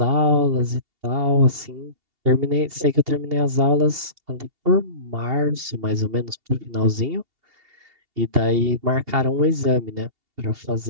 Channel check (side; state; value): left; late; 2.8 ms